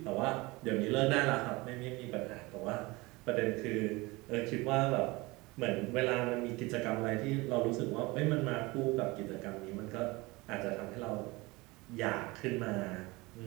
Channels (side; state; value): left; quieter; 23.1 dB